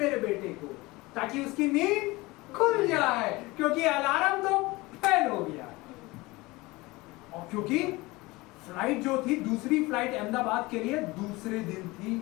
बेटे को, ताकि उसकी नींद खुल जाए, क्योंकि अलार्म तो फेल हो गया। और क्योंकि फ्लाइट जो थी, दूसरी फ्लाइट अहमदाबाद के लिए दूसरे दिन थी,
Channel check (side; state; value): right; quieter; 21.9 dB